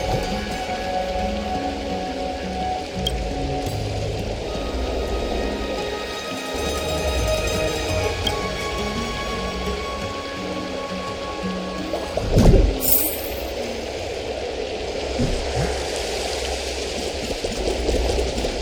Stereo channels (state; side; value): identical; both; correlation 1.00